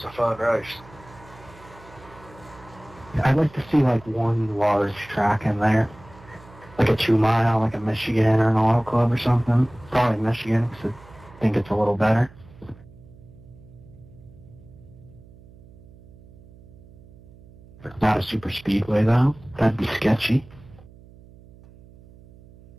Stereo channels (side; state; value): right; noise; hum, 23 dB below the sound